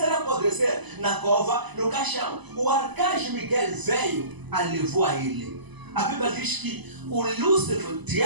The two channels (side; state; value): left; late; 1.0 ms